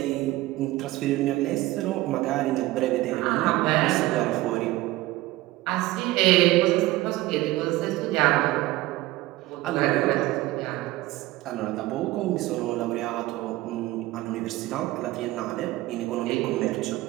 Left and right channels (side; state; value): left; quieter; 18.0 dB